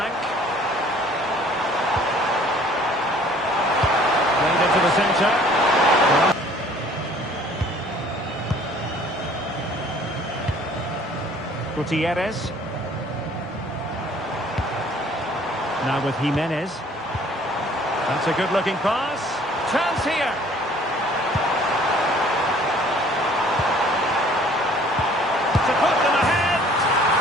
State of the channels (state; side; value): normal; both; correlation 0.55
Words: Played into the centre. Gutierrez. Now with Jimenez. That's a good-looking pass. Chance here. To put them ahead.